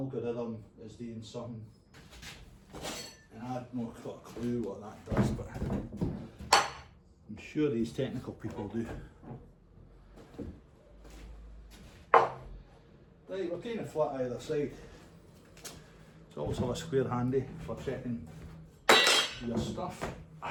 is doing something. And I've not got a clue what that does, but I'm sure these technical people do. Right, we're kind of flat either side. It's also a square handy for checking your stuff.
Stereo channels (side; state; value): both; identical; correlation 1.00